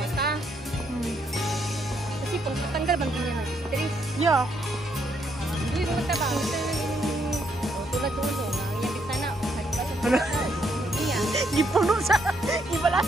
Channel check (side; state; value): both; normal; correlation 0.74